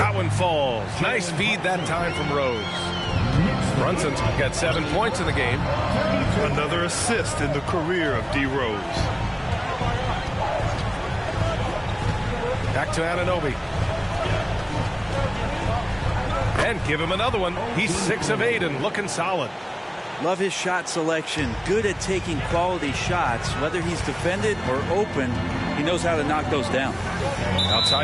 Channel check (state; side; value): identical; both; correlation 1.00